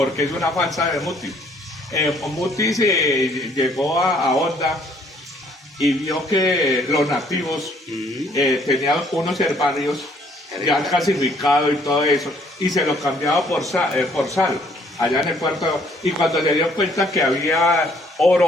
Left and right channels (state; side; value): normal; both; correlation 0.63